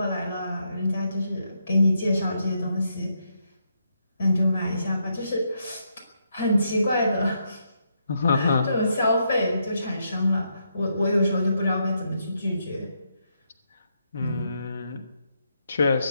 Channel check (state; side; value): inverted; both; correlation -0.79